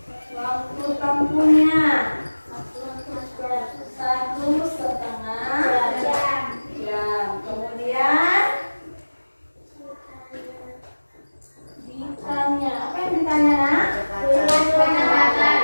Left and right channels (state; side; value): inverted; both; correlation -1.00